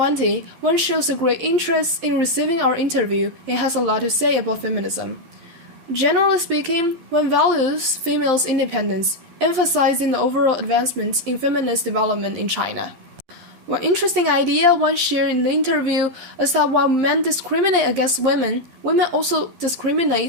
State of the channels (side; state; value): left; late; 12 ms